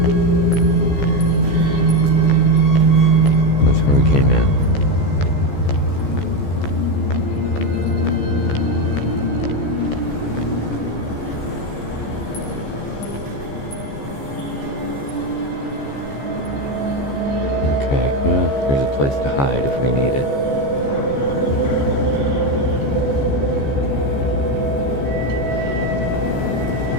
That's where we came in. Okay, well, there's a place to hide if we need it.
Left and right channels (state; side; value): late; right; 14 ms